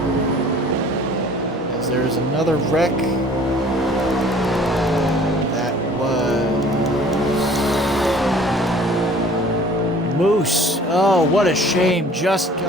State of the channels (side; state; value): both; normal; correlation 0.51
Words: As there is another wreck. Moose. Oh, what a shame. Just